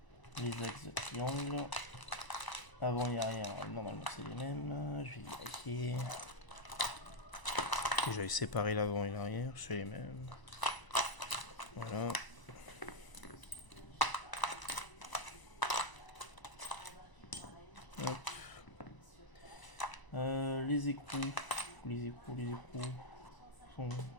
Les axes de triangle. Avant et arrière, normalement c'est les mêmes. Je vais vérifier. J'avais séparé l'avant et l'arrière, c'est les mêmes. Voilà. Hop. Les écrous. Les écrous sont...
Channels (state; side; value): late; right; 1.0 ms